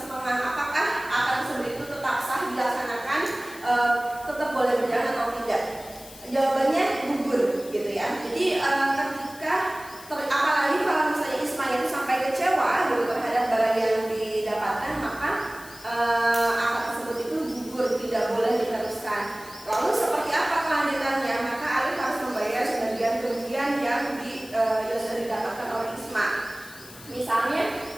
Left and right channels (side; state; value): left; noise; hiss, 18 dB below the sound